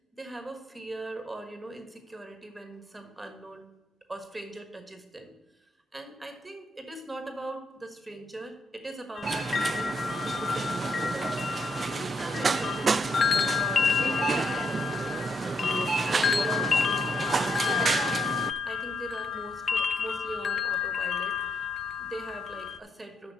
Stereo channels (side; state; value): both; normal; correlation 0.76